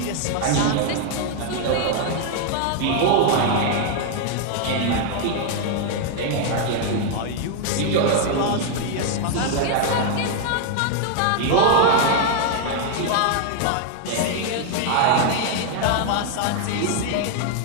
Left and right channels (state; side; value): different; both; correlation 0.00